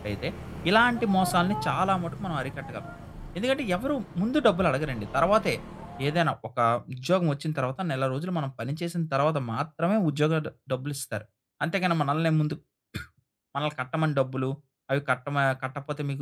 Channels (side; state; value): both; identical; correlation 1.00